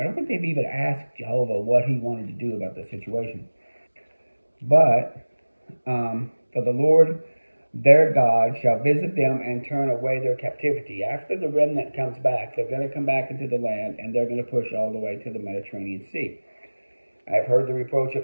don't think they've even asked Jehovah what he wanted to do about the situation. But for the Lord their God shall visit them and turn away their captivity. After the remnant comes back, they're going to come back into the land, and they're going to push all the way to the Mediterranean Sea. I've heard the reproach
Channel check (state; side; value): inverted; both; correlation -1.00